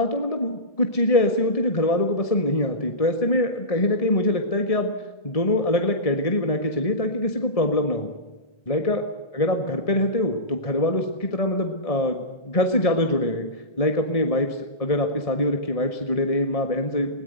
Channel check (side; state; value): right; late; 1.7 ms